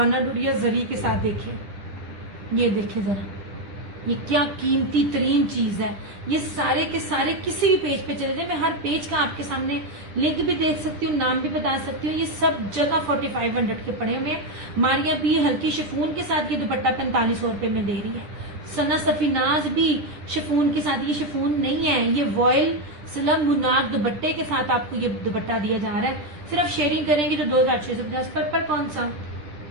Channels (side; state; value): left; late; 10 ms